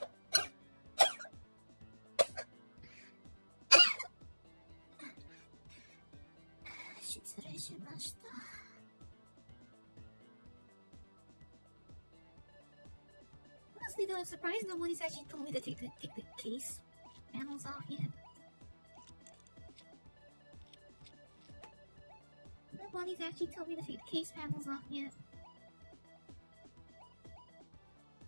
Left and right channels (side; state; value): both; inverted; correlation -1.00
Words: Honestly though, I'm surprised nobody's actually told me to take the case panels off yet. Nobody's actually told me to take the case panels off yet.